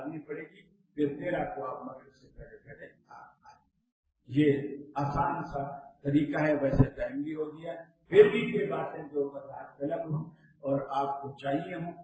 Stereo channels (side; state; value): both; identical; correlation 1.00